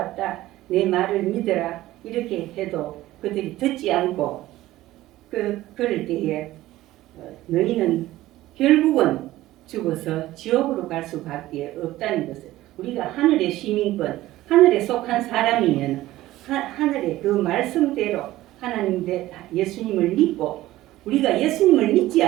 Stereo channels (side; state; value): left; quieter; 16.0 dB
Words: 내 말을 믿어라 이렇게 해도 그들이 듣지 않고 그럴 때에 너희는 결국은 죽어서 지옥으로 갈 수밖에 없다는 것을 우리가 하늘의 시민권 하늘에 속한 사람이면 하늘의 그 말씀대로 하나님 예수님을 믿고 우리가 예수님을 믿지